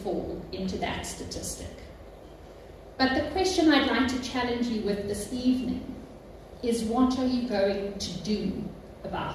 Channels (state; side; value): identical; both; correlation 1.00